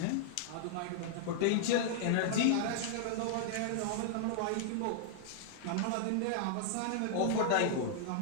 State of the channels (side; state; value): both; different; correlation -0.01